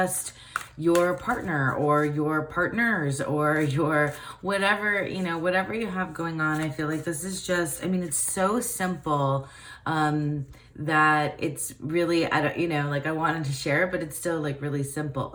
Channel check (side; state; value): both; identical; correlation 1.00